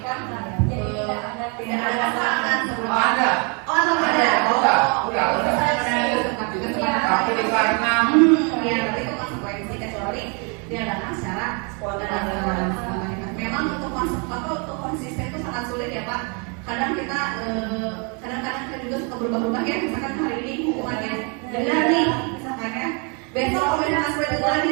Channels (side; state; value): left; quieter; 34.9 dB